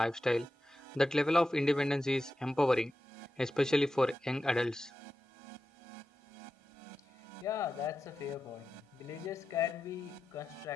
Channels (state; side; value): normal; both; correlation 0.91